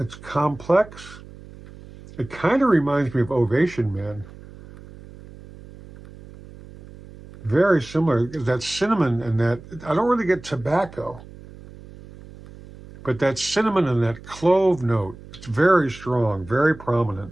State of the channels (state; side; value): noise; right; hum, 18 dB below the sound